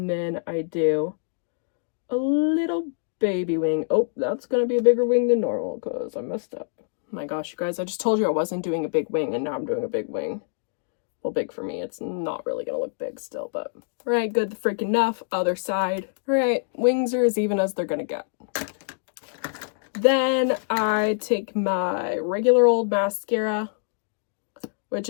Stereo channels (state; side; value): silent; right; digital silence